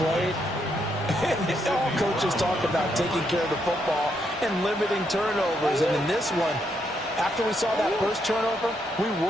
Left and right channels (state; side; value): normal; both; correlation 0.77